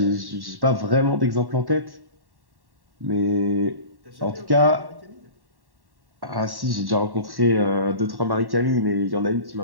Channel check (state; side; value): late; left; 1.1 ms